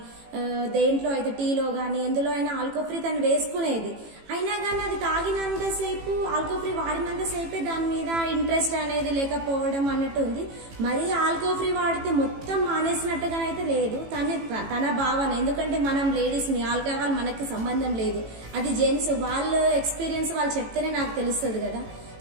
దేంట్లో అయితే టీలో కానీ ఎందులో అయినా ఆల్కో ఫ్రీ తను వేసుకునేది. అయినా కానీ అది తాగినంతసేపు ఆల్కో ఫ్రీ వాడినంతసేపే దాని మీద ఇంట్రెస్ట్ అనేది లేకపోవడం అన్నట్టు ఉంది. మరీ ఆల్కో ఫ్రీ వాడితే మొత్తం మానేసినట్టుగానైతే లేదు తన భావన. ఎందుకంటే మనం లేడీస్ని, ఆల్కహాల్ మనకి సంబంధం లేదు, అది జెంట్స్, వాళ్ళ ఎక్స్పీరియన్స్ వాళ్ళు చెప్తేనే నాకు తెలుస్తుంది కదా.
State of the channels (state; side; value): late; left; 18 ms